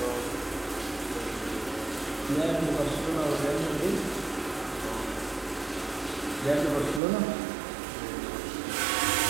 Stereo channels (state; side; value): drops out; left; at 7.0 s